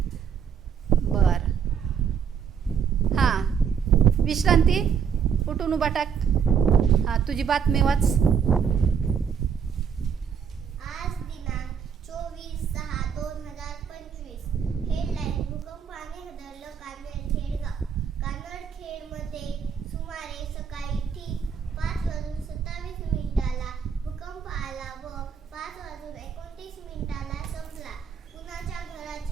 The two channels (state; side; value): quieter; left; 7.1 dB